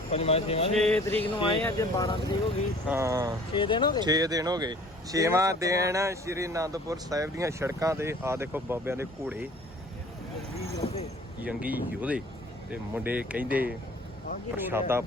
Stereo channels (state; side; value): normal; both; correlation 0.50